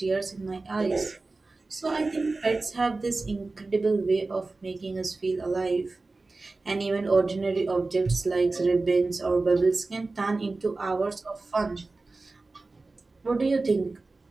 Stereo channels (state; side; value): quieter; left; 3.5 dB